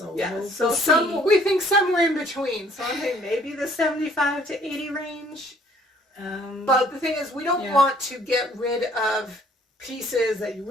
Yeah, we'll so see. we think somewhere in between. So I'm thinking maybe the 75 to 80 range. But the thing is, we don't Yeah. want to get rid of pieces that you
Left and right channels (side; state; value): both; normal; correlation 0.60